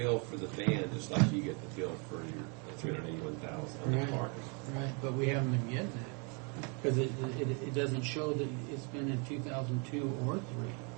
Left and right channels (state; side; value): quieter; left; 34.9 dB